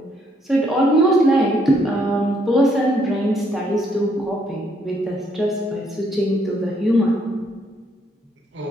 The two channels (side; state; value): both; normal; correlation 0.70